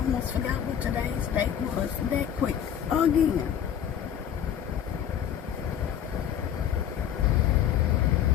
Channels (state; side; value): quieter; right; 9.2 dB